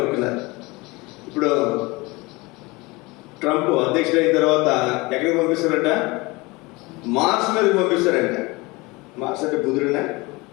ఇప్పుడు ట్రంప్ అధ్యక్షుడు అయిన తర్వాత ఎక్కడికి పంపిస్తారంట? మార్స్ మీదకి పంపిస్తారంట. మార్స్ అంటే బుధుడినా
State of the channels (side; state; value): right; quieter; 24.0 dB